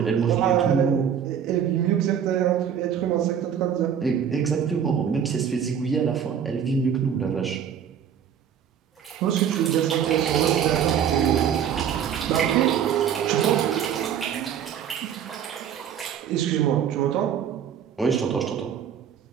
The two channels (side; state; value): left; quieter; 8.5 dB